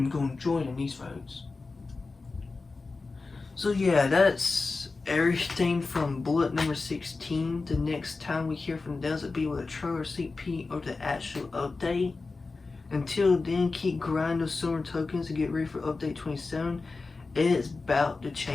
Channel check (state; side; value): quieter; right; 3.9 dB